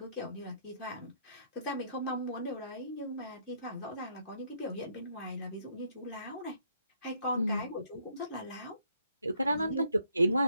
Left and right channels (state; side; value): inverted; both; correlation -0.69